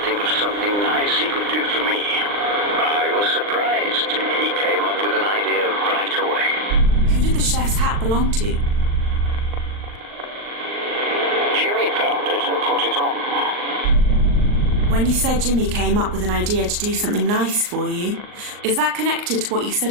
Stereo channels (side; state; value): left; late; 39 ms